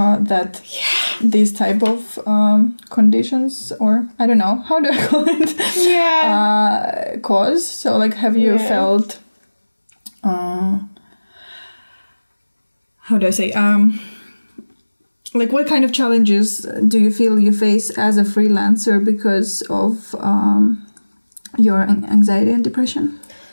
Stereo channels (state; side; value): inverted; both; correlation -1.00